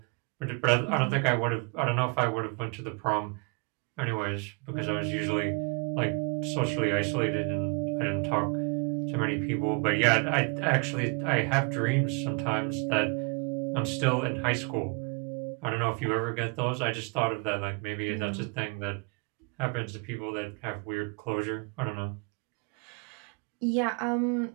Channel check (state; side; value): quieter; left; 31.6 dB